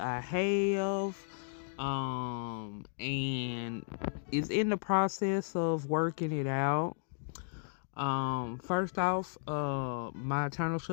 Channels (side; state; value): right; silent; digital silence